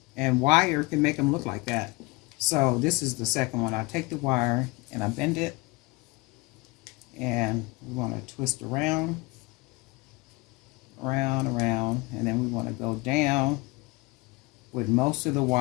And wire can make them look like that. So this is the second one. I take the wire and I bend it. And we want to twist around, around, around. And then we want to go down with most of the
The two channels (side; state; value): right; quieter; 24.2 dB